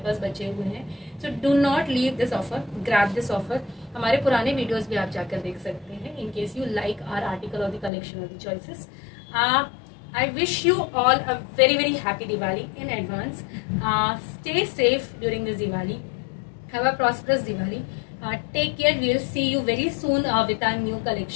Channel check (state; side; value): drops out; right; at 7.9 s